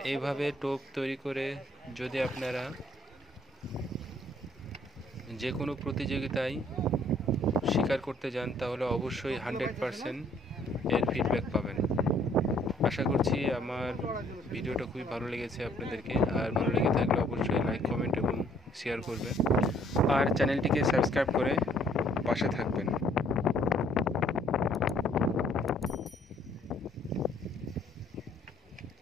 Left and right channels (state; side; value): normal; both; correlation 0.62